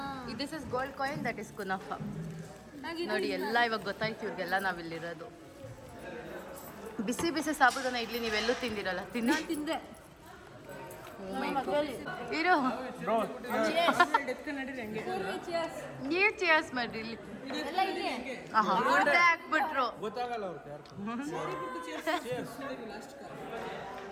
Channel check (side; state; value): both; identical; correlation 1.00